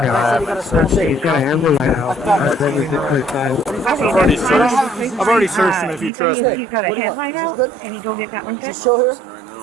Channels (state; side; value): drops out; left; at 6.1 s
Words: said he got a small shake. I've already searched him if you trust me. What do you want? Is this good? Just chill here?